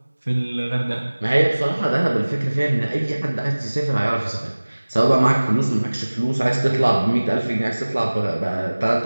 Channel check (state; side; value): inverted; both; correlation -1.00